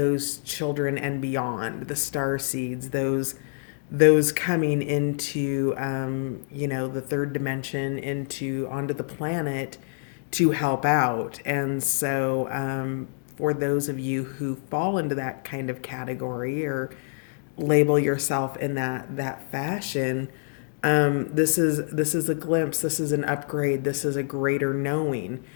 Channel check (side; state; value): right; silent; digital silence